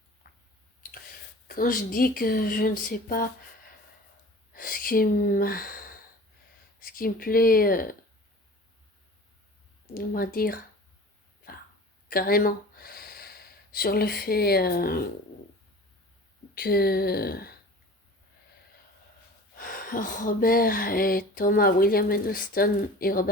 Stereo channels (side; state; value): both; normal; correlation 0.41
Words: quand je dis que je ne sais pas ce qui me, ce qui me plaît, on va dire, enfin, carrément, sur le fait que Robert et Thomas, William Edelston et